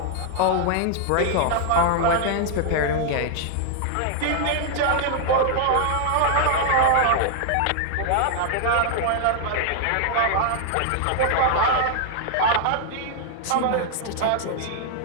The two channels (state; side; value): different; both; correlation -0.01